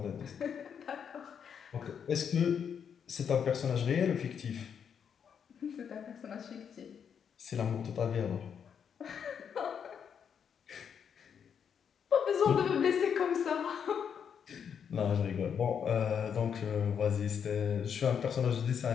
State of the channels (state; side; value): quieter; right; 7.5 dB